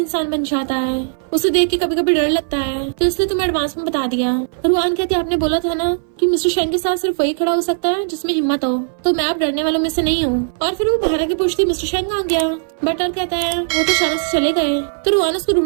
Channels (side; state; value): left; silent; 61 dB below the other